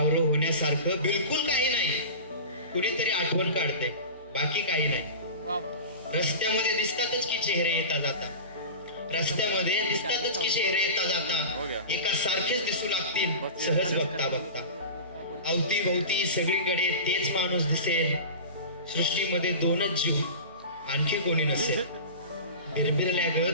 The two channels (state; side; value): inverted; both; correlation -0.31